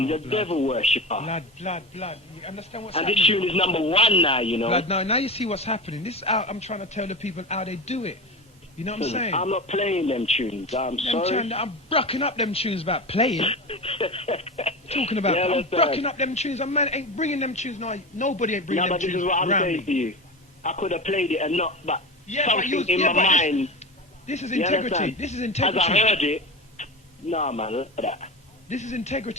a devil worshipper. Blood. You understand what's and happening? This tune is #1 now, you know. Blood, now you see what's happening. This I'm trying to tell the people how they do it. You know what I'm saying? I'm not playing them tunes. I'm sorry. I'm brucking up them tunes about playing. Talking about I'm brucking up them tunes. A man ain't bringing them tunes. No, nobody ain't bringing them tunes. This is what I'm saying to you. I could have played it and not, but something in my mind. This is integrity. This is integrity. As I heard it, no man, look at that. This is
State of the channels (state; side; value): normal; both; correlation 0.26